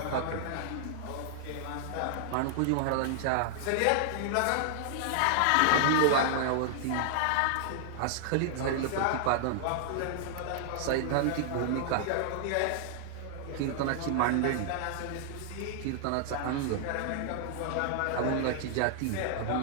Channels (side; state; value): both; different; correlation -0.01